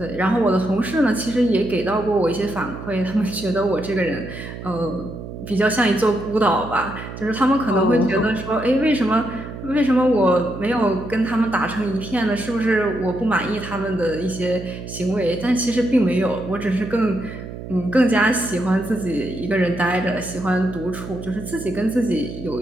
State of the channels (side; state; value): right; noise; hum, 10 dB below the sound